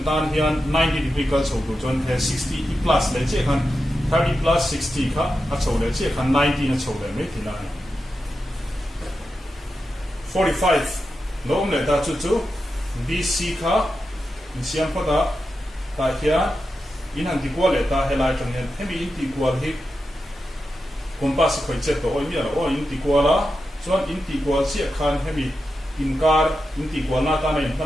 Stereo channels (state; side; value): normal; both; correlation 0.89